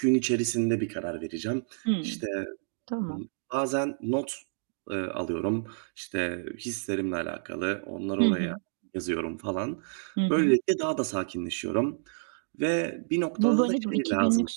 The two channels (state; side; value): silent; left; digital silence